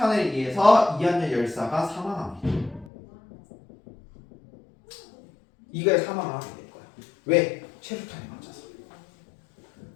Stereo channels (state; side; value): drops out; right; at 2.9 s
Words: 의해서 이한열 열사가 사망합니다. 이거에 사망을 하게 될 거야. 왜? 최루탄에 맞아서.